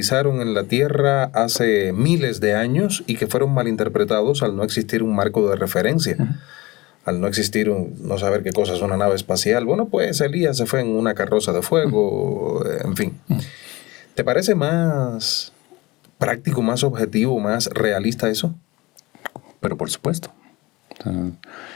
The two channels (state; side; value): quieter; right; 21.6 dB